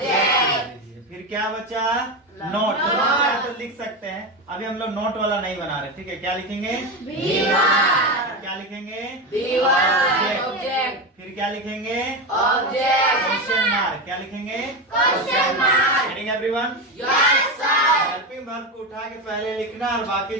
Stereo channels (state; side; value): normal; both; correlation 0.16